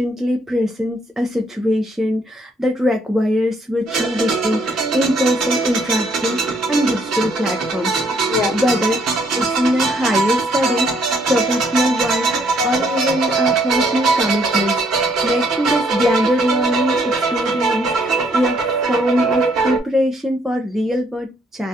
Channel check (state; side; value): normal; both; correlation 0.69